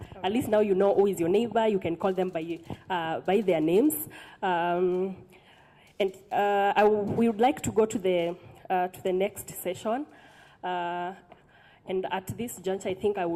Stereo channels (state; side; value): identical; both; correlation 1.00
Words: At least now you know who is your neighbor. You can call them by their names. We would like to go to the next session. And at this juncture, I think I